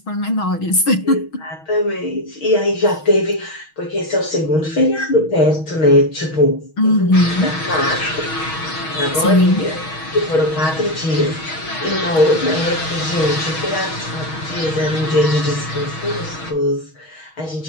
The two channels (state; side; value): late; right; 6.3 ms